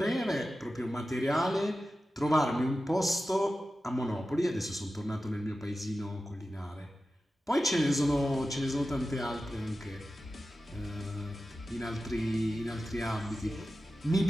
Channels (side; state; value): both; normal; correlation 0.93